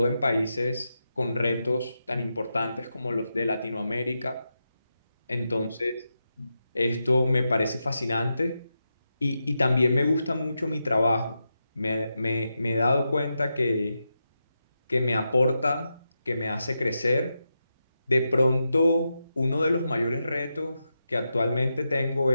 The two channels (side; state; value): both; inverted; correlation -0.87